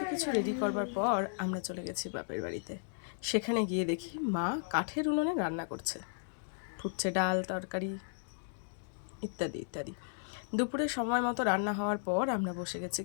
কিছু রেডি করবার পর আমরা চলে গেছি বাপের বাড়িতে। সেখানে গিয়ে দেখি মা কাঠের উনুনে রান্না করছে, ফুটছে ডাল তরকারি ইত্যাদি ইত্যাদি। দুপুরে সময় মতো রান্না হওয়ার পর আমরা বসে গেছি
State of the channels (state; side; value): silent; right; digital silence